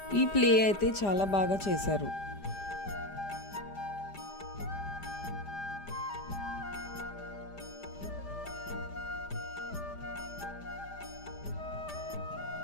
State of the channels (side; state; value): right; late; 5.0 ms